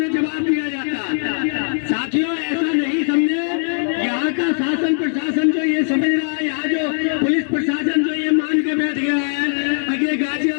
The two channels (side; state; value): right; silent; 66 dB below the other